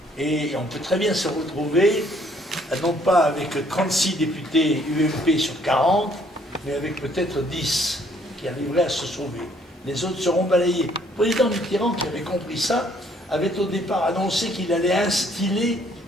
Et on peut très bien se retrouver, non pas avec 36 députés UMP sur 40, mais avec peut-être 10 qui arriveraient à se sauver. Les autres seront balayés. Le président Mitterrand, qui avait compris ça, avait au départ annoncé qu'il allait instiller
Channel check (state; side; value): normal; both; correlation 0.64